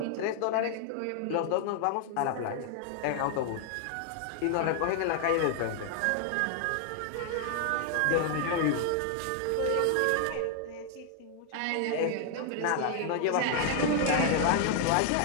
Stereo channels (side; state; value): both; different; correlation 0.00